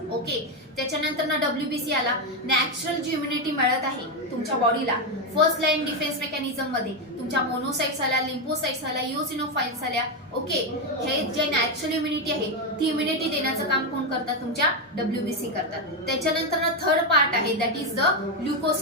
ओके. त्याच्यानंतर ना डब्ल्यूबीसी आला, नॅचरल जी इम्युनिटी मिळत आहे तुमच्या बॉडीला फर्स्ट लाईन डिफेन्स मेकॅनिझम मध्ये. तुमच्या मोनोसाइट्स आल्या, लिम्फोसाइट्स आल्या, इओसिनोफाइल्स आल्या, ओके. हे जे नॅचरल इम्युनिटी आहे ती इम्युनिटी देण्याचं काम कोण करतात, तुमच्या डब्ल्यूबीसी करतात. त्याच्यानंतर ना थर्ड पार्ट आहे, that is the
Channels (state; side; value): normal; both; correlation 0.07